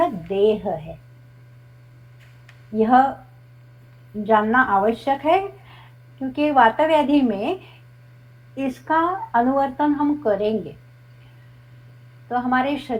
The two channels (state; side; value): identical; both; correlation 1.00